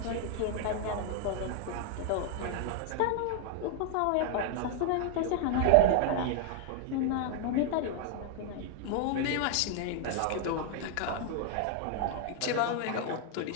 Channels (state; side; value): different; both; correlation 0.00